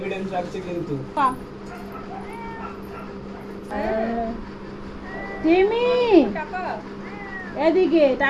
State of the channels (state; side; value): identical; both; correlation 1.00